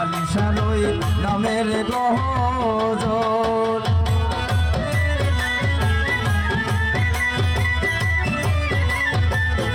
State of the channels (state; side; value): identical; both; correlation 1.00